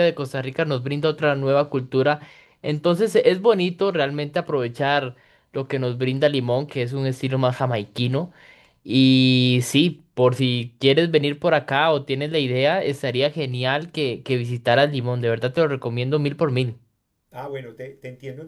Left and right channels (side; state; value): both; identical; correlation 1.00